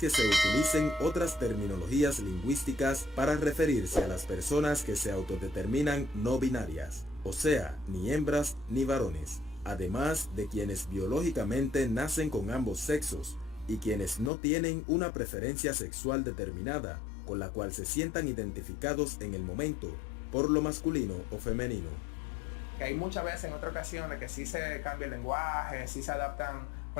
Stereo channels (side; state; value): right; drops out; at 14.3 s